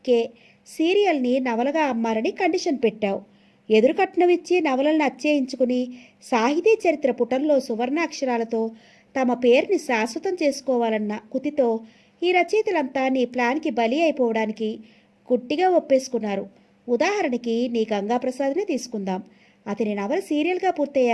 సీరియల్ని నవలగా అమ్మాలని కండిషన్ పెట్టావు. ఎదురు కట్నం ఇచ్చి నవలలను అచ్చేయించుకుని సాహితీ చరిత్ర పుటంలో సువర్ణాక్షరాలతో తమ పేరుని శాశ్వతం చేసుకోవాలన్న కుతితో ఈ రచయితలంతా నీ ప్లాన్కి బలి అయిపోవడానికి గుట్టిగా ఒప్పేసుకున్నారు. ఉదాహరణకి నీ గంగాప్రసాద్నే తీసుకుందాం. అతని నవల సీరియల్గా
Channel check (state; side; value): identical; both; correlation 1.00